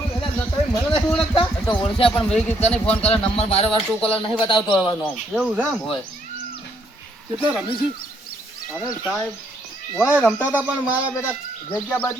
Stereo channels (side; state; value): both; normal; correlation 0.71